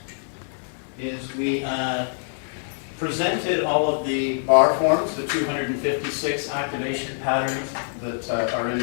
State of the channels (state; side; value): silent; right; 62 dB below the other